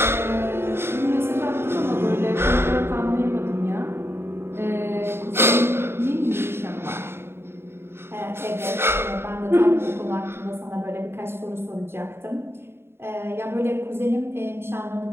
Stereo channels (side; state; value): left; late; 0.11 ms